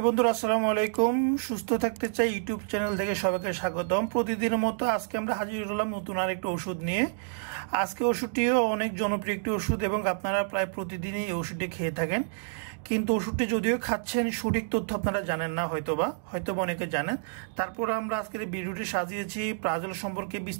বন্ধুরা আসসালামু আলাইকুম। সুস্থ থাকতে চাই ইউটিউব চ্যানেল থেকে সবাইকে স্বাগতম। প্রতিদিনের মতো আজকে আমরা হাজির হলাম নতুন আরেকটি ওষুধ নিয়ে। আজকে ওষুধটিও অনেক জনপ্রিয় একটি ওষুধ এবং আপনারা প্রায় প্রতিদিনই এই ওষুধটি খেয়ে থাকেন, কিন্তু ওষুধটি যদিও খাচ্ছেন সঠিক তথ্য আপনারা জানেন না, হয়তোবা অনেকে জানেন। তারপর আমরা আজকের এই ভিডিওটি সাজিয়েছি প্রাজল সম্পর্কে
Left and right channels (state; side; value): silent; left; digital silence